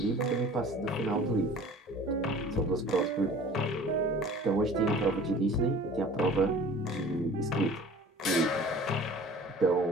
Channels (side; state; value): both; normal; correlation 0.45